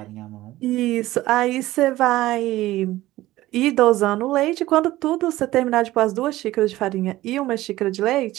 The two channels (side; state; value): left; quieter; 16.5 dB